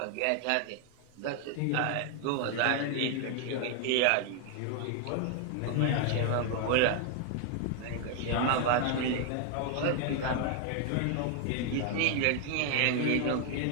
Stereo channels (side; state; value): both; different; correlation 0.00